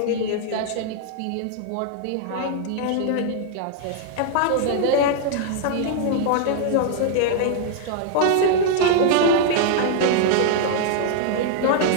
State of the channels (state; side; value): different; both; correlation -0.01